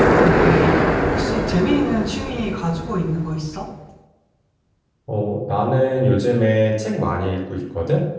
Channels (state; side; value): identical; both; correlation 1.00